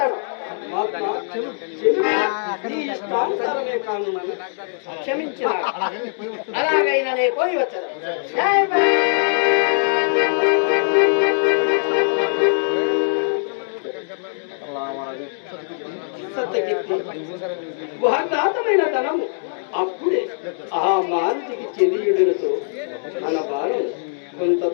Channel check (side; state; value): right; silent; 65 dB below the other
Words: మహాత్మా, నీ ఇష్టానుసారమే కానున్నాను. క్షమించిన అలాగైనా నేను పోయి వచ్చేదాను. జై భీమ్. సత్యకీర్తి, వాగ్దాతమైన ధనము అప్పుడే ఆ మారుతికి చెందియుడులతో మన భారం కొంత